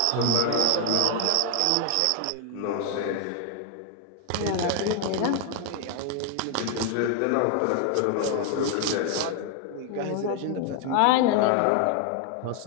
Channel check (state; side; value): different; both; correlation 0.00